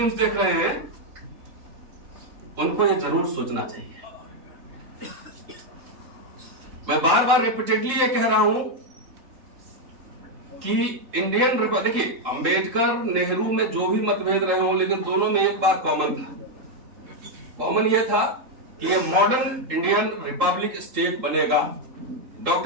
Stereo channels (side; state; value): left; late; 3.7 ms